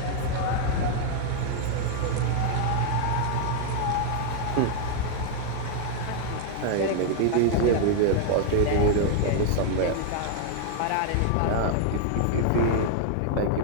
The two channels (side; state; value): both; different; correlation 0.00